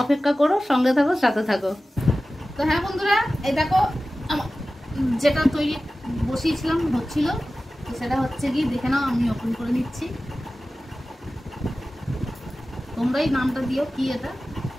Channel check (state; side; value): normal; both; correlation 0.95